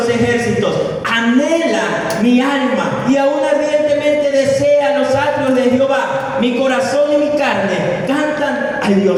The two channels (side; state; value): both; identical; correlation 1.00